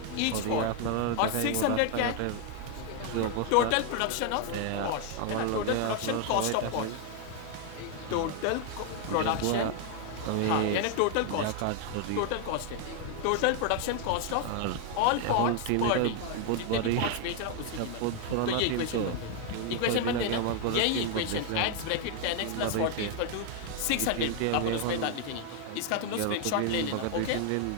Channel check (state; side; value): different; both; correlation 0.01